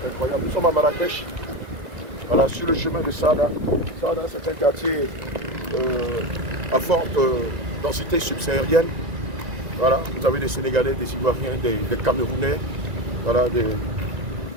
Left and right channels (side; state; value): left; late; 1.9 ms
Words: c'est incroyable. Nous sommes à Marrakech, voilà, sur le chemin de Sada. Sada, c'est un quartier à forte densité subsaharienne. Voilà, vous avez des Sénégalais, des Ivoiriens, des Camerounais, voilà, des